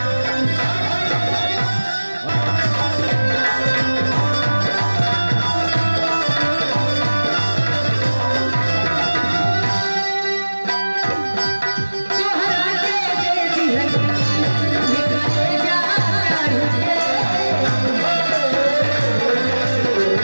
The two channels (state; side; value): inverted; both; correlation -1.00